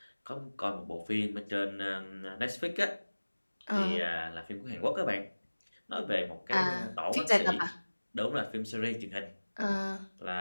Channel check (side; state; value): both; inverted; correlation -1.00